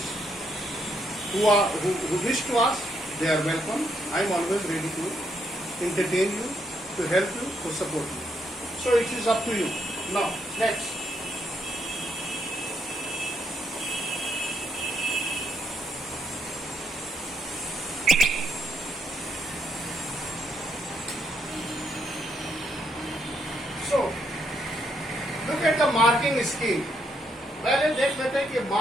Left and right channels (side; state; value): both; normal; correlation 0.76